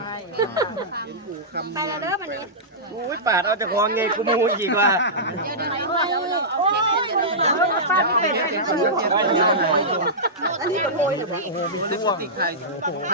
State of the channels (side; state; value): both; normal; correlation -0.15